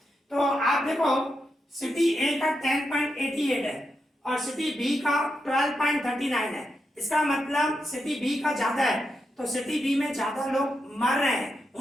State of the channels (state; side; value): normal; both; correlation 0.85